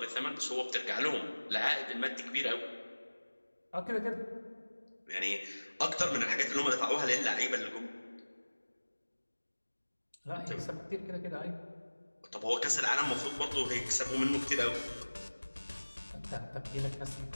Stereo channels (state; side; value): inverted; both; correlation -1.00